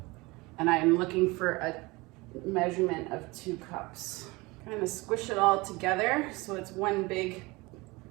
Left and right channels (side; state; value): left; quieter; 23.4 dB